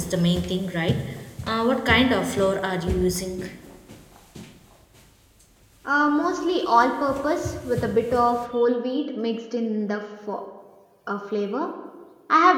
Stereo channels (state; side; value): identical; both; correlation 1.00